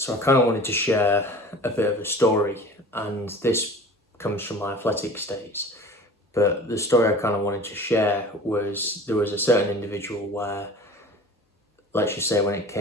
I kind of wanted to share a bit of a story, and this comes from my athletics days. But the story I kind of wanted to share was there was a certain individual where, let's just say when it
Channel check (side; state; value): both; normal; correlation 0.41